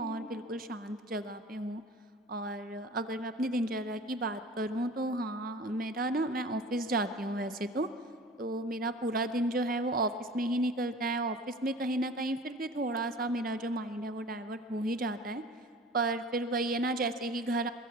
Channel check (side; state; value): both; normal; correlation 0.41